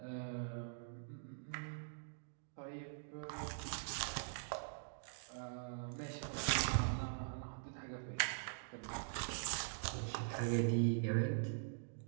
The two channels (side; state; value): left; silent; digital silence